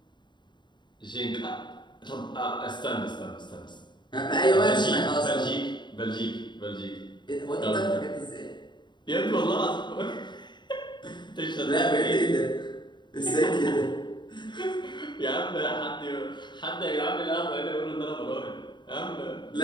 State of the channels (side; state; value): right; late; 0.22 ms